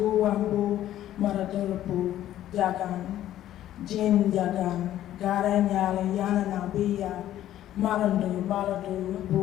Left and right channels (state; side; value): quieter; right; 12.6 dB